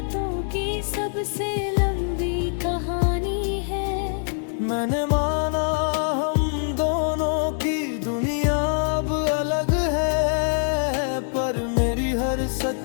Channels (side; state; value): right; silent; 63 dB below the other